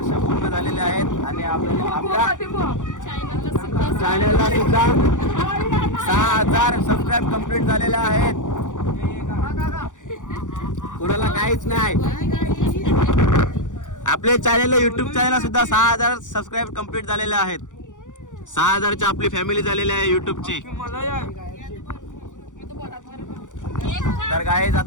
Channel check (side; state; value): right; late; 0.86 ms